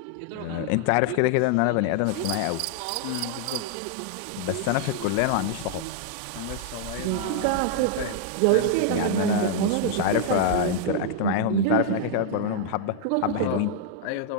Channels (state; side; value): different; both; correlation 0.00